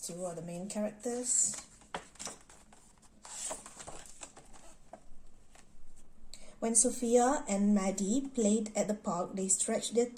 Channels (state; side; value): identical; both; correlation 1.00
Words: are the main characters. When Sophia and Maddi played at the park, they stretched their